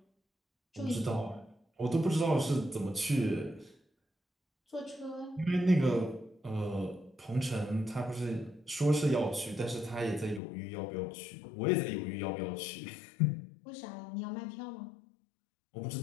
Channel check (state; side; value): drops out; right; at 10.4 s